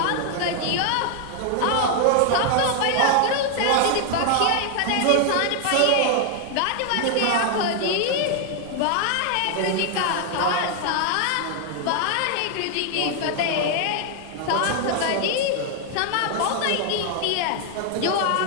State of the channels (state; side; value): different; both; correlation 0.00